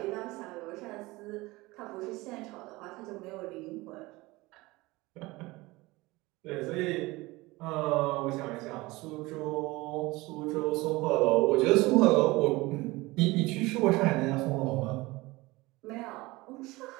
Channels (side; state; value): left; quieter; 21.3 dB